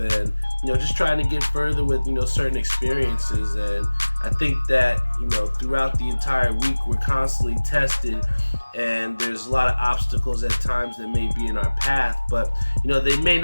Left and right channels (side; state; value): both; inverted; correlation -1.00